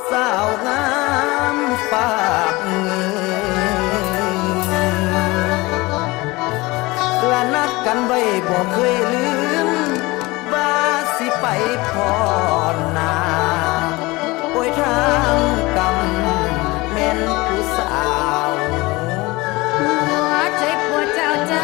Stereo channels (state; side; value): quieter; right; 22.3 dB